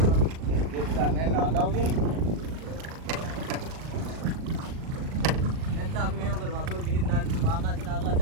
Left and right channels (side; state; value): left; late; 38 ms